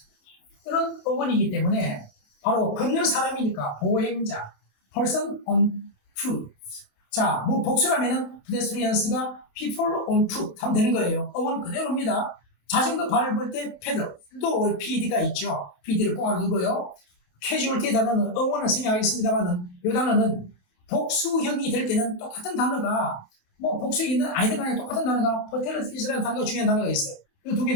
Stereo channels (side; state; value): right; late; 28 ms